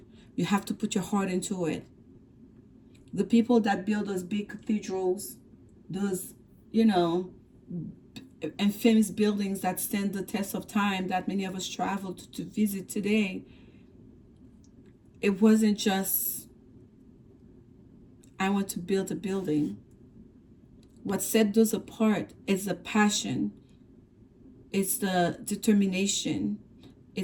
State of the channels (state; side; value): identical; both; correlation 1.00